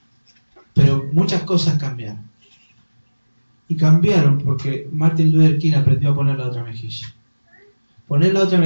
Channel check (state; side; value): inverted; both; correlation -1.00